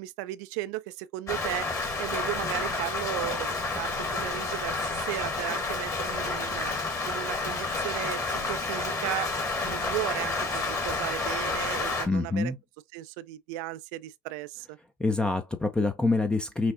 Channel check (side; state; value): both; normal; correlation 0.46